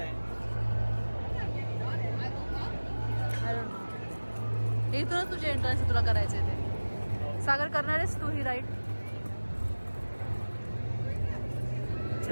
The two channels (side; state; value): both; inverted; correlation -1.00